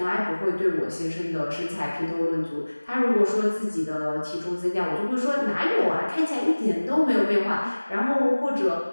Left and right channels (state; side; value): inverted; both; correlation -1.00